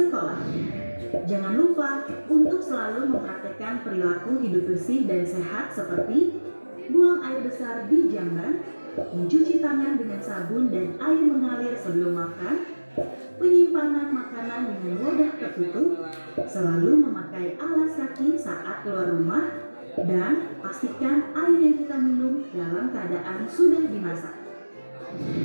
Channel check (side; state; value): both; inverted; correlation -1.00